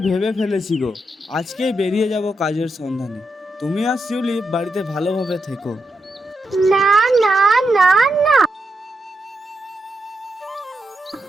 ভেবে ফেলেছি গো, আজকেই বেরিয়ে যাব কাজের সন্ধানে। তুমি আর শিউলি বাড়িতে ভালোভাবে থেকো। না না না না,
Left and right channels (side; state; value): both; normal; correlation 0.85